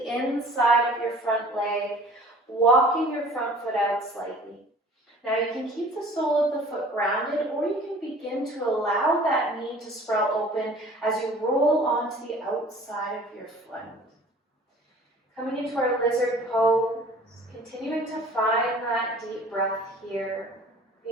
inside of your front leg, walking your front foot out slightly. Now you can keep the sole of the foot grounded, or you can begin to allow that knee to sprout open as you roll onto the outside of your foot. Coming into our lizard pose, continuing to find that deep breath here,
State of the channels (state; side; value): normal; both; correlation 0.48